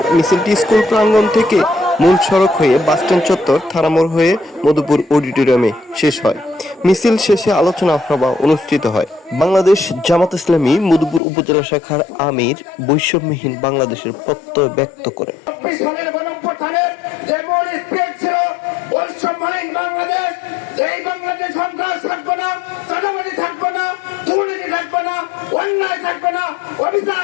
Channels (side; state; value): right; drops out; at 11.2 s